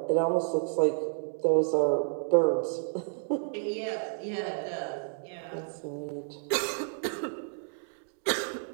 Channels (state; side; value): silent; left; digital silence